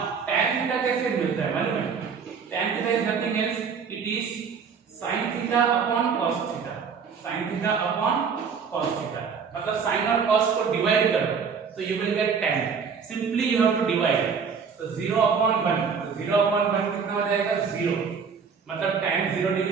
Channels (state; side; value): quieter; left; 6.0 dB